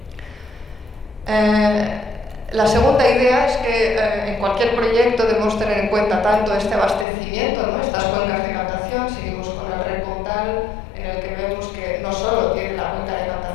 La segunda idea es que en cualquier proyecto debemos tener en cuenta tanto este abastecimiento, ¿no?, estas cuencas de captación. Seguimos con el Rec Comtal, en el que vemos que no solo tiene la cuenca de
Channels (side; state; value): right; drops out; at 7.1 s